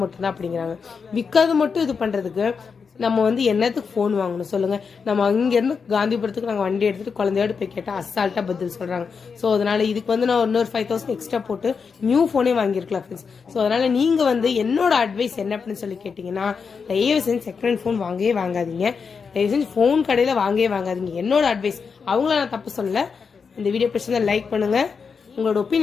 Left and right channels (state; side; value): quieter; right; 5.6 dB